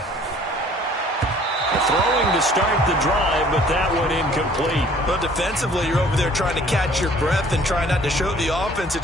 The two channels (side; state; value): both; normal; correlation 0.55